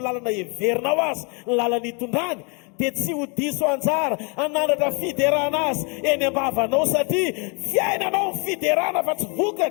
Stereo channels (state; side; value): quieter; right; 33.5 dB